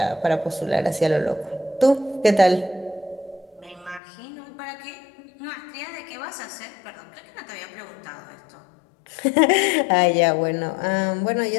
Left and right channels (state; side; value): drops out; right; at 4.0 s